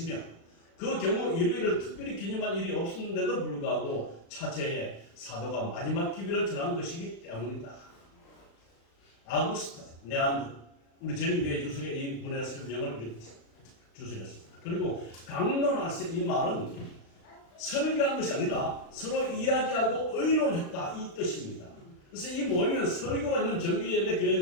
그 경우 일요일을 특별히 기념할 일이 없었는데도 불구하고 차체에 사도가 마지막 기별을 전한 것이기 때문이다. 아구스타 네안드 우리 재림교회 주석의 이 분의 설명을 주석했습니다. 그리고 강론하세 이 말은 설교한 것이 아니라 서로 이야기하고 의논했다 이 뜻입니다. 그래서 이 모임은 설교가 있는 정규 예배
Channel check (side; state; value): right; late; 36 ms